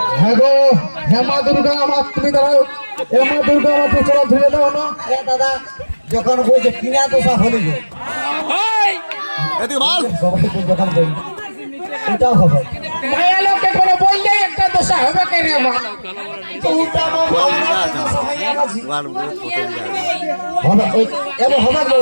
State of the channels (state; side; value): inverted; both; correlation -1.00